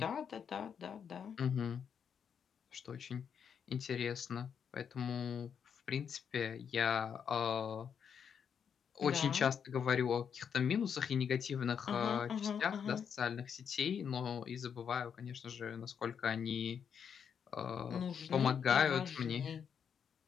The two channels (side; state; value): right; quieter; 7.4 dB